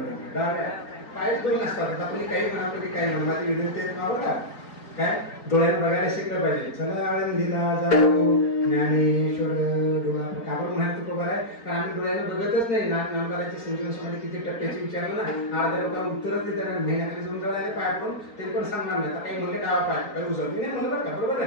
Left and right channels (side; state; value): right; late; 4.4 ms